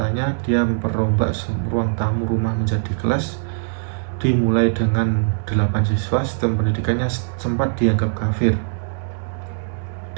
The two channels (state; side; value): silent; left; digital silence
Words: dia memperrombak ruang tamu rumah menjadi kelas. Dimulai dengan 8 siswa, sistem pendidikannya sempat dianggap kafir